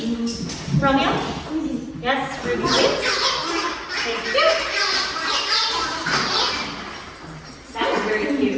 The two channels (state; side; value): identical; both; correlation 1.00